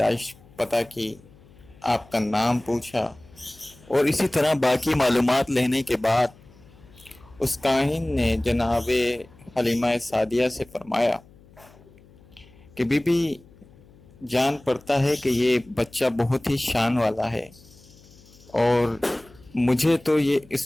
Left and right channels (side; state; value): left; noise; hum, 25 dB below the sound